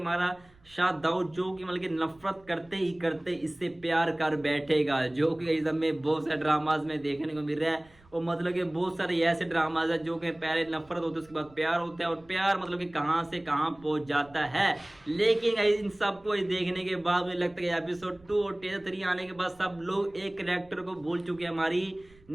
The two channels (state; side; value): noise; right; rumble, 28 dB below the sound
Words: शाह दाऊद जो कि मतलब कि नफरत करते ही करते इससे प्यार कर बैठेगा, जो कि गाइज हमें बहुत सारे ड्रामाज में देखने को मिल रहा है। और मतलब कि बहुत सारे ऐसे ड्रामाज है जो कि पहले नफरत होती है उसके बाद प्यार होता है और प्यार मतलब कि कहां से कहां पहुंच जाता है। लेकिन इन सबको देखने के बाद मुझे लगता है एपिसोड 2 और टीजर 3 आने के बाद सब लोग एक कैरेक्टर को भूल चुके हैं, हमारी